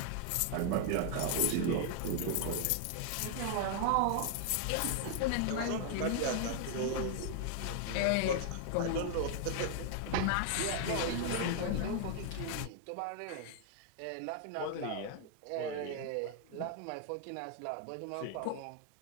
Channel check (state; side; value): different; both; correlation 0.00